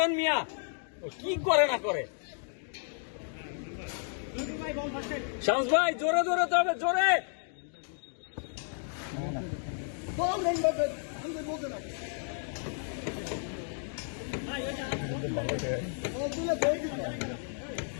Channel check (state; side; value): silent; right; 56 dB below the other